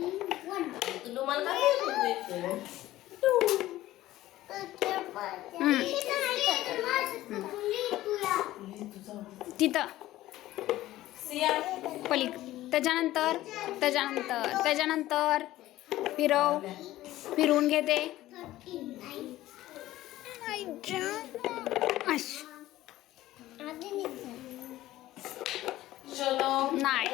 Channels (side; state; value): right; quieter; 15.5 dB